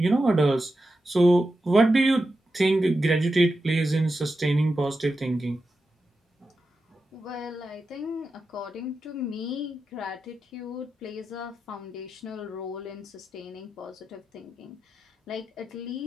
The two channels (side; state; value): both; normal; correlation 0.90